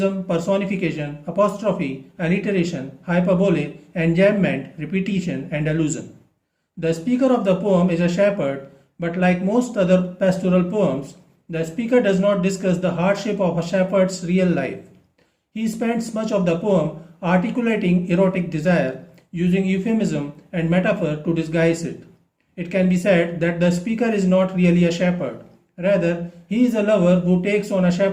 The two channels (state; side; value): identical; both; correlation 1.00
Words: personification, apostrophe, alliteration, hyperbole, enjambment, repetition, and allusion. The speaker of the poem is a shepherd, but like most other pastoral poems, the speaker does not discuss the hardship of a shepherd's real life. He spends much of the poem articulating erotic desire, using euphemism and metaphor to disguise it. It can be said that the speaker is not really a shepherd. Rather, he is a lover who takes on a